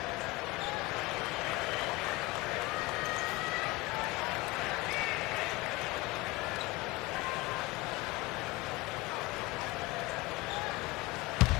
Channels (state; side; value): quieter; right; 21.0 dB